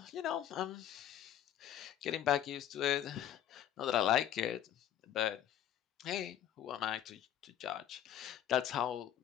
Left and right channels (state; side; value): quieter; right; 10.9 dB